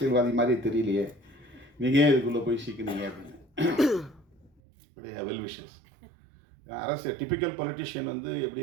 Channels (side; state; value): left; drops out; at 4.5 s